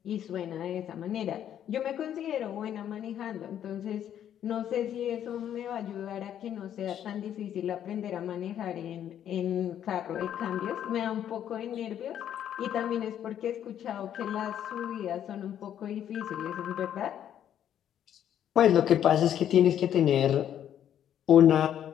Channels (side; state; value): right; quieter; 10.1 dB